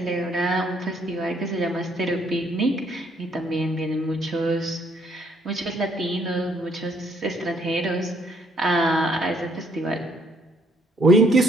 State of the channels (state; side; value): normal; both; correlation 0.67